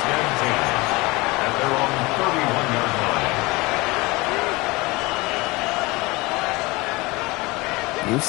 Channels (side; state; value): right; quieter; 23.4 dB